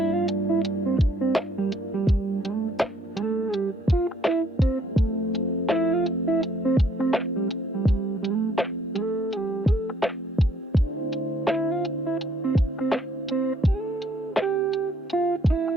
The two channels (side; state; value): both; normal; correlation 0.64